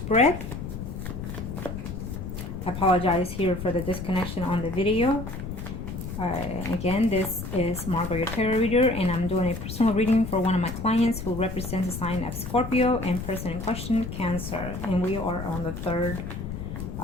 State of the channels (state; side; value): noise; left; rumble, 7 dB below the sound